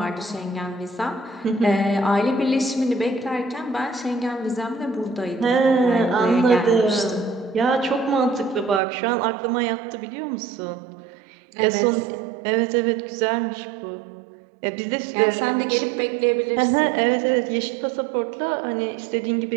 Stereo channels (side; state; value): left; drops out; at 8.8 s